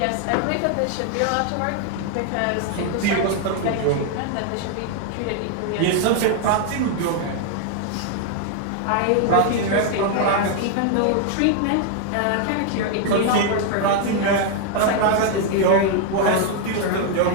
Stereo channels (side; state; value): both; different; correlation 0.00